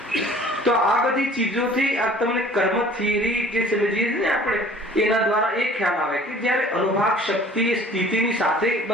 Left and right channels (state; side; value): normal; both; correlation 0.50